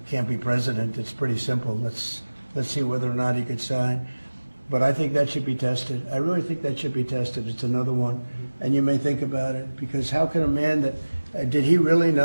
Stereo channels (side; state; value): both; inverted; correlation -1.00